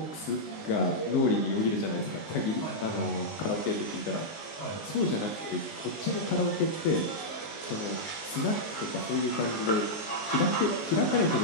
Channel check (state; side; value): late; right; 19 ms